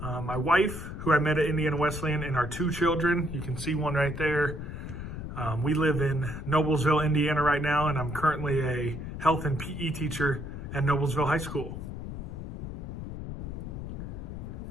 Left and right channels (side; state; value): left; noise; rumble, 7 dB below the sound